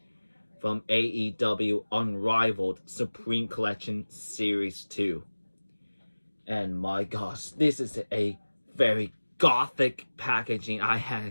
from AEW Unrivaled Supreme Collection Series 2. And my gosh, this is a very gothic packaging I had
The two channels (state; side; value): inverted; both; correlation -1.00